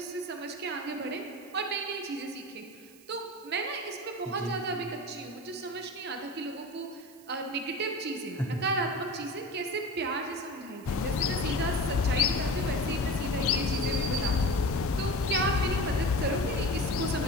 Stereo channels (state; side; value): noise; right; hiss, 24 dB below the sound